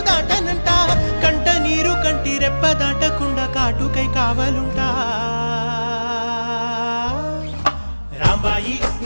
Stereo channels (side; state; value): both; inverted; correlation -1.00